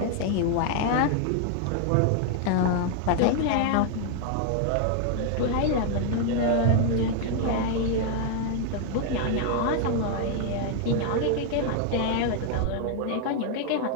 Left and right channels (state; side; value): different; both; correlation 0.00